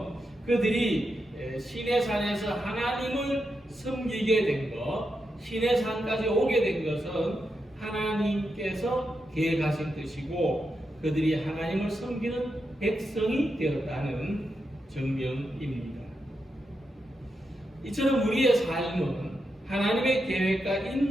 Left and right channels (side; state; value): both; normal; correlation 0.86